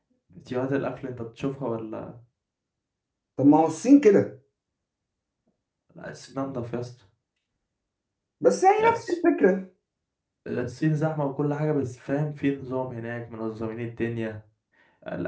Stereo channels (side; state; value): both; identical; correlation 1.00